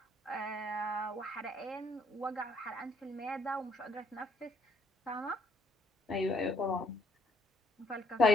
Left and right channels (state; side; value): normal; both; correlation 0.66